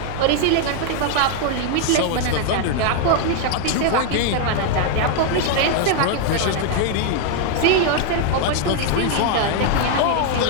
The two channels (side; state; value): both; different; correlation 0.00